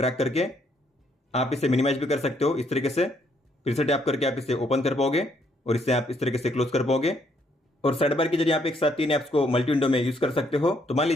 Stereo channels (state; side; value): normal; both; correlation 0.70